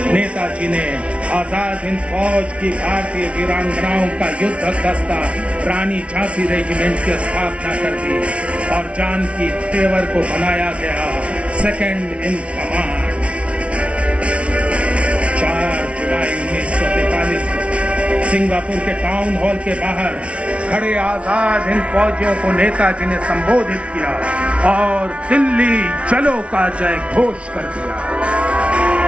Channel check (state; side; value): late; left; 0.061 ms